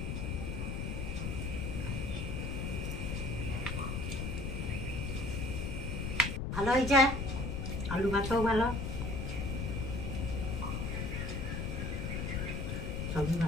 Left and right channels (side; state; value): left; noise; rumble, 2 dB below the sound